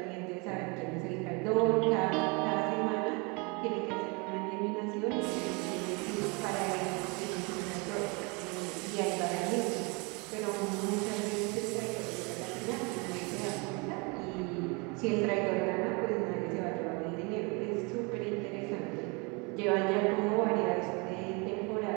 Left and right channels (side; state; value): left; quieter; 30.0 dB